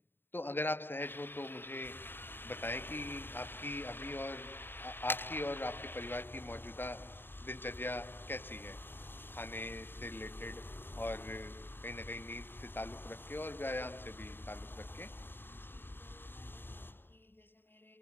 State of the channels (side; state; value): right; late; 0.10 ms